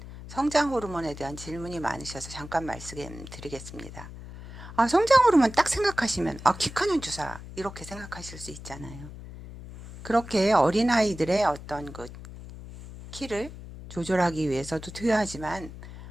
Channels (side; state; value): left; noise; hum, 13 dB below the sound